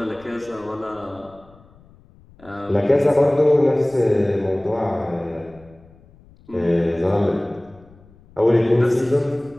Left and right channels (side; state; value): left; noise; rumble, 26 dB below the sound